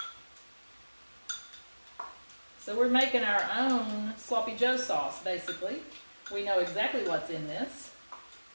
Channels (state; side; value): inverted; both; correlation -1.00